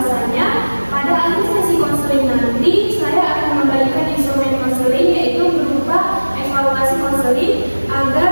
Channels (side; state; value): both; inverted; correlation -1.00